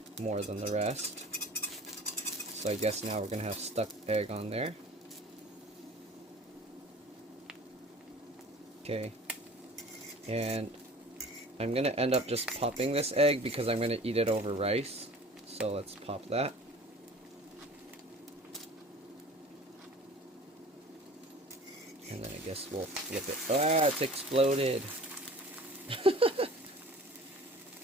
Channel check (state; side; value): normal; both; correlation 0.44